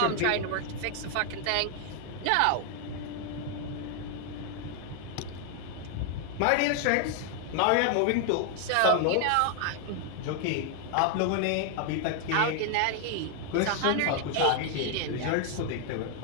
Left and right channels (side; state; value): both; different; correlation 0.00